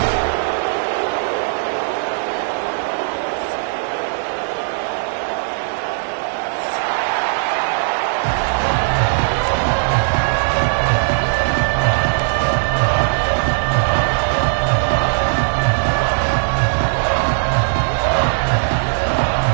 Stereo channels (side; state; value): left; silent; 67 dB below the other